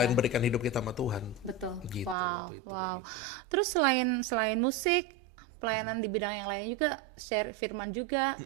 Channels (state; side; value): drops out; left; at 2.1 s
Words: berikan hidup kita sama Tuhan. Betul. Gitu waktu itu kayak gitu. Terus selain musik, pelayanan di bidang yang lain juga, share firman juga.